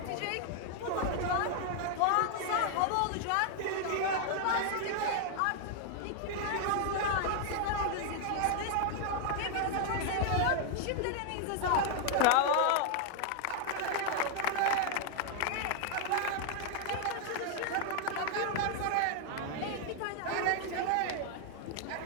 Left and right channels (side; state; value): both; different; correlation 0.00